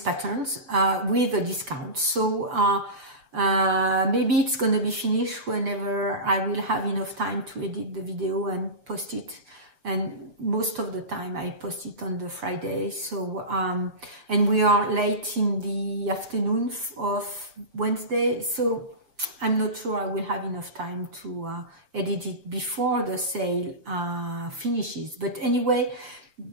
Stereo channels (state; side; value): late; left; 6.3 ms